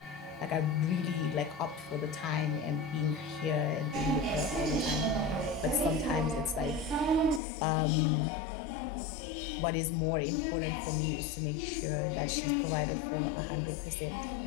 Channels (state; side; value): drops out; right; at 7.4 s